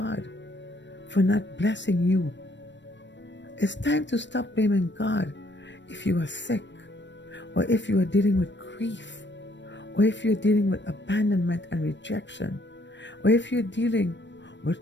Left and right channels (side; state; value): right; late; 0.53 ms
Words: for not blessing you. It's time to stop blaming God if you are sick, or if you are dealing with grief, or if you're dealing with abandonment and rejection, or if you're dealing with